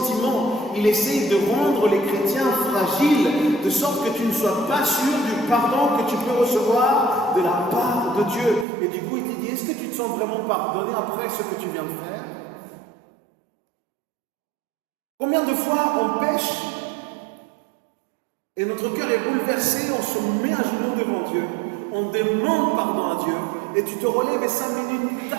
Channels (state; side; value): drops out; left; at 8.7 s